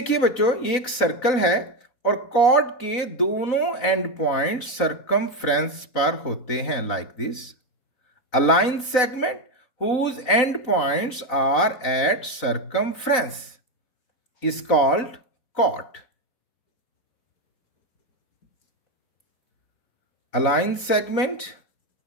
बच्चों, ये एक सर्कल है और कॉर्ड के दोनों एंड पॉइंट सर्कमफ्रेंस पर होते हैं, like this. A line segment whose end points are at circumference is called chord. A line segment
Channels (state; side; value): late; right; 3.9 ms